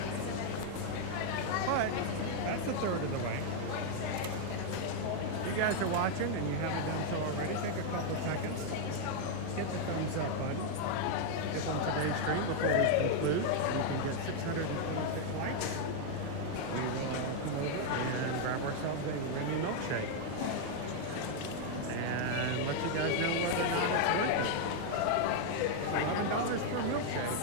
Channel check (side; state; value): both; different; correlation 0.00